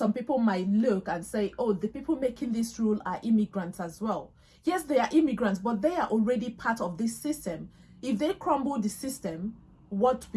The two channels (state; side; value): identical; both; correlation 1.00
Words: people might look and say, oh, the people making this rule are immigrants as well. Yes, they are immigrants, but they are already part of this system. If they crumble the system, what